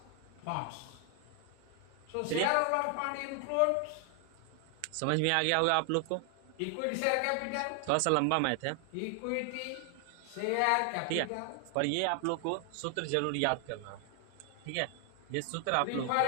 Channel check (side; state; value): both; different; correlation 0.00